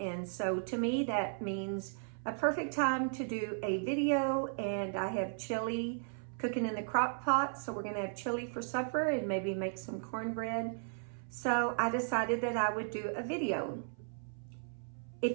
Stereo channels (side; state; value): left; silent; 54 dB below the other